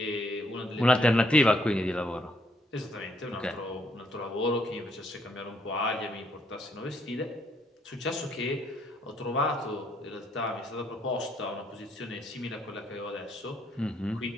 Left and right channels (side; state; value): both; normal; correlation 0.71